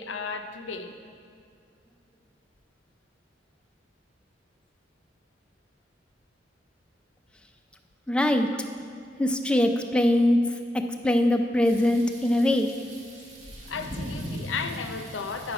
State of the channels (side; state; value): both; normal; correlation 0.84